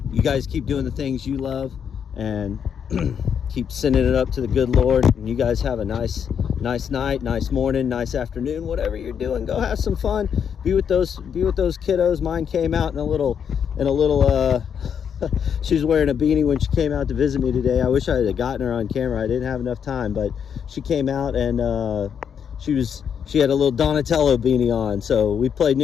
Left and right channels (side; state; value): right; quieter; 7.7 dB